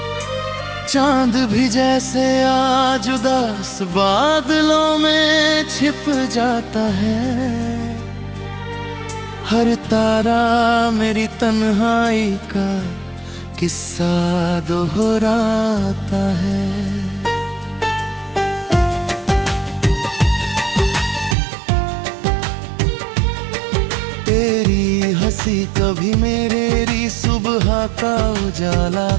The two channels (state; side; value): drops out; left; at 21.4 s